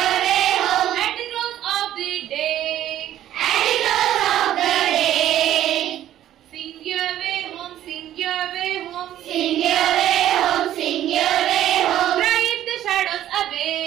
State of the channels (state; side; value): quieter; left; 12.3 dB